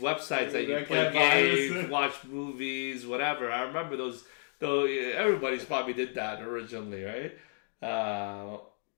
that you play games, watch movies, whatever. I remember those. Though everybody's probably did that originally, right?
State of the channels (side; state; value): right; silent; 57 dB below the other